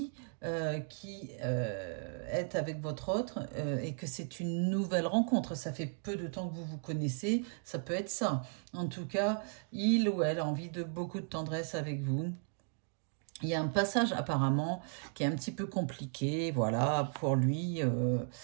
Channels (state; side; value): silent; left; 54 dB below the other